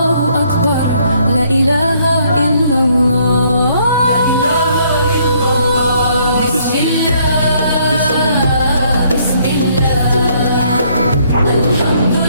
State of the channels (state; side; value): inverted; both; correlation -0.66